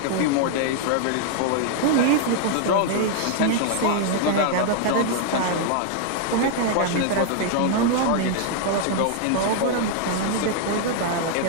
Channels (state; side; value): different; both; correlation 0.00